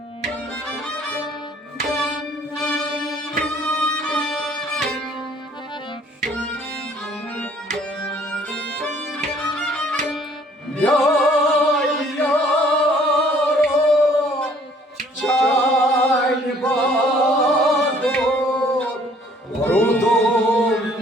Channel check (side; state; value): both; normal; correlation 0.59